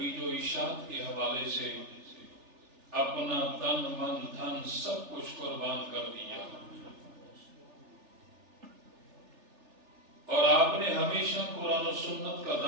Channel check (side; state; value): left; late; 3.4 ms